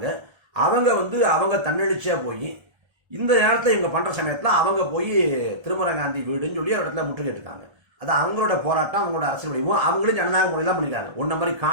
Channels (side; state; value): left; late; 1.3 ms